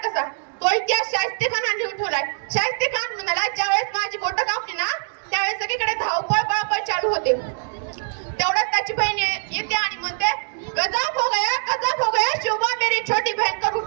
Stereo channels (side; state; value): left; silent; digital silence